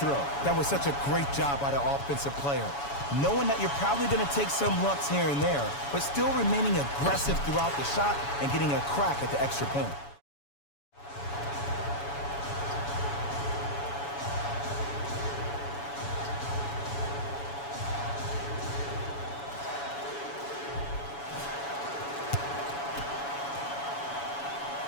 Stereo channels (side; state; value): right; late; 7.1 ms